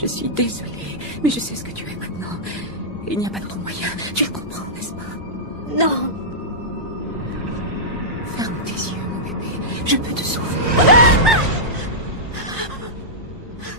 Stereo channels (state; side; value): normal; both; correlation -0.12